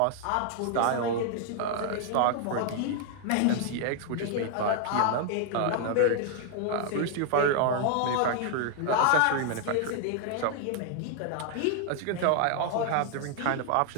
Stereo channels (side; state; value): both; different; correlation 0.00